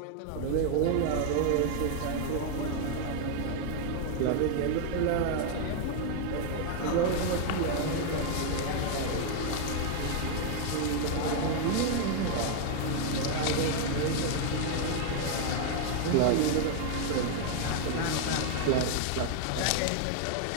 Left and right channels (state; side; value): different; both; correlation 0.00